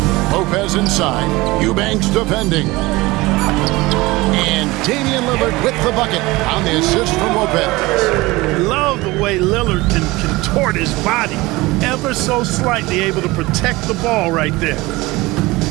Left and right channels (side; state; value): left; quieter; 21.1 dB